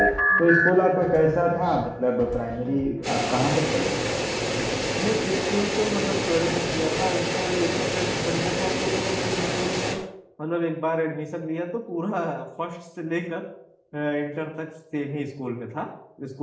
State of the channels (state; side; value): identical; both; correlation 1.00